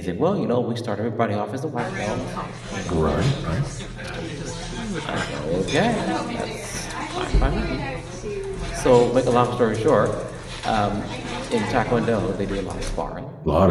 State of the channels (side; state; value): both; identical; correlation 1.00